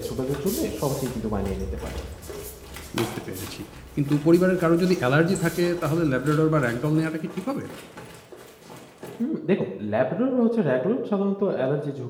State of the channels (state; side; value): identical; both; correlation 1.00